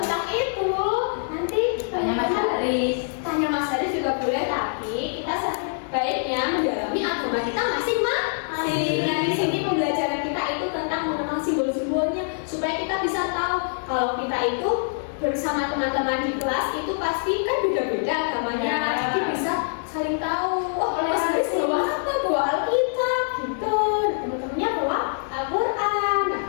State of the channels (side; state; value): right; silent; digital silence